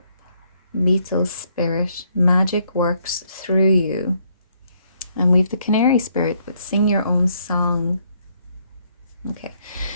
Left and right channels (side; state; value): both; inverted; correlation -0.70